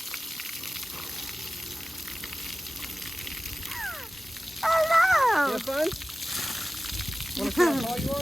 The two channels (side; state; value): both; normal; correlation 0.96